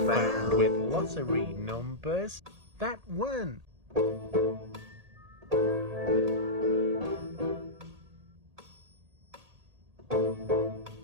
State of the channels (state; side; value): late; left; 1.8 ms